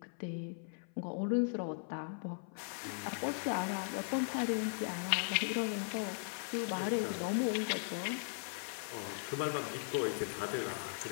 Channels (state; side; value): silent; right; 52 dB below the other